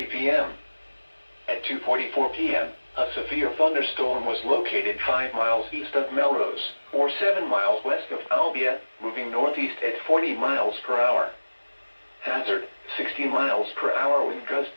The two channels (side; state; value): both; inverted; correlation -1.00